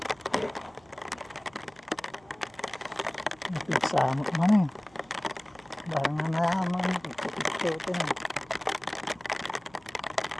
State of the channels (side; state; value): right; noise; hum, 29 dB below the sound